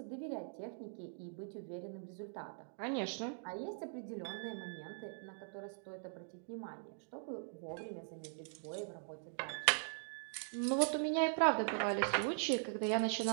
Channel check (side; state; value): left; silent; digital silence